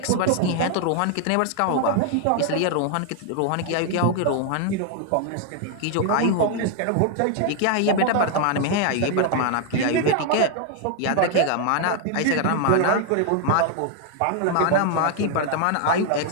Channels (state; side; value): different; both; correlation 0.00